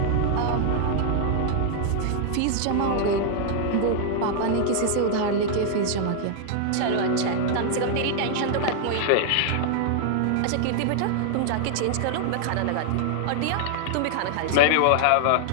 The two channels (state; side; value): different; both; correlation -0.01